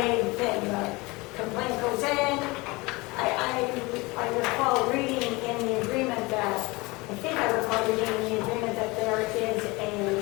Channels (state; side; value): quieter; right; 23.9 dB